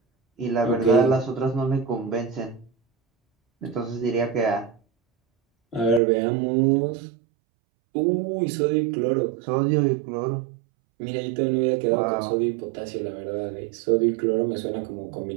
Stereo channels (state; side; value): drops out; left; at 6.0 s